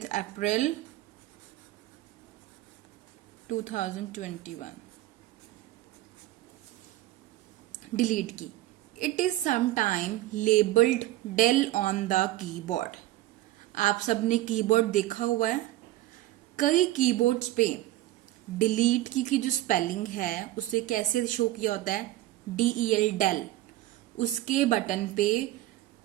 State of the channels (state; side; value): quieter; left; 15.8 dB